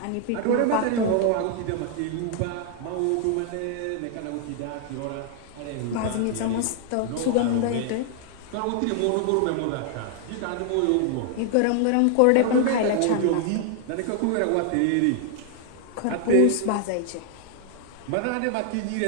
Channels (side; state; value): both; different; correlation 0.00